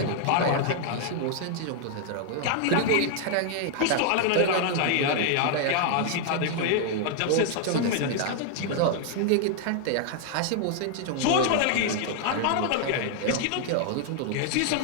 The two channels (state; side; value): different; both; correlation 0.00